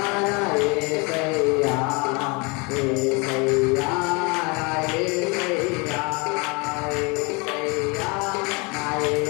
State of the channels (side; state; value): right; quieter; 28.7 dB